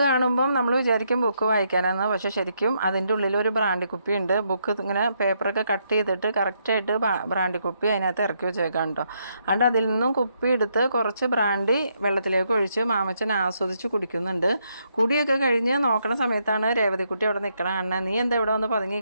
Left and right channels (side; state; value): both; inverted; correlation -0.76